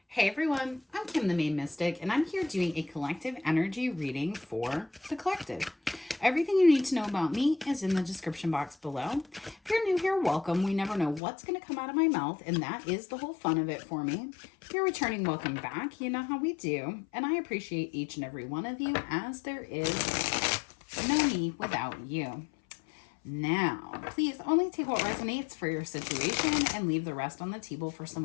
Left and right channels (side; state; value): right; drops out; at 11.2 s